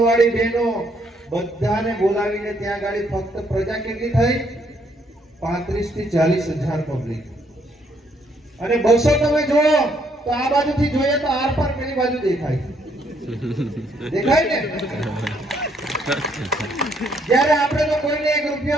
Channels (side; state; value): both; normal; correlation 0.70